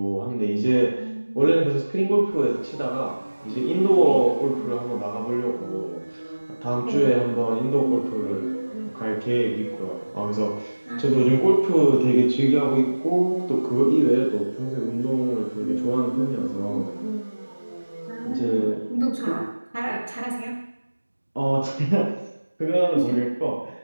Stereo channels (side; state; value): both; inverted; correlation -1.00